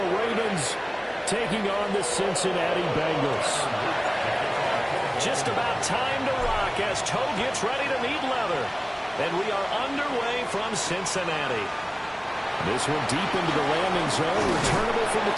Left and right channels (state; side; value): identical; both; correlation 1.00